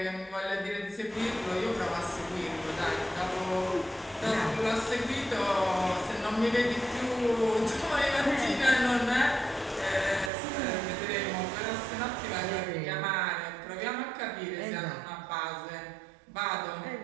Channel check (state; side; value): drops out; left; at 10.3 s